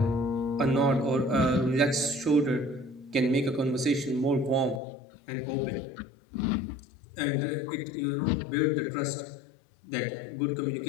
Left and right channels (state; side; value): drops out; right; at 4.8 s